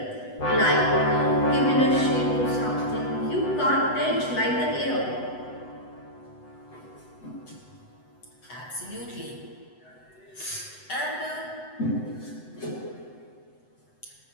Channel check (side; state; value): right; late; 8.0 ms